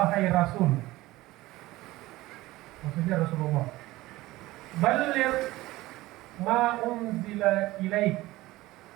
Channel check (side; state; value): left; quieter; 18.2 dB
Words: rasul, maksudnya Rasulullah, balligh ma unzila ilaik,